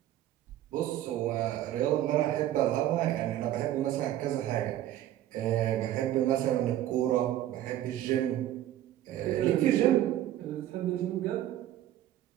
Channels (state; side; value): quieter; left; 12.8 dB